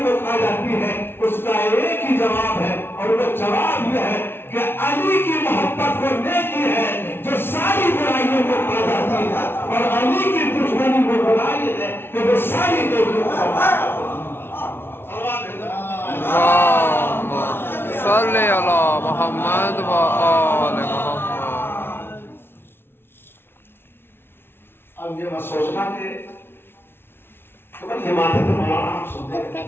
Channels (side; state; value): right; late; 0.11 ms